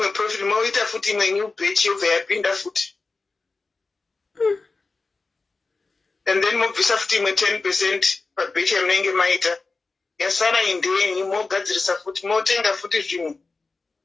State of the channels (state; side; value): quieter; right; 3.8 dB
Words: profit moita futi imwe new batch yobva yapinda futi. And then mobvisa futi imwe 10% pabatch yamunenge maita. Yasara indenyi mogadzirisa futi motenga futi zvimwe.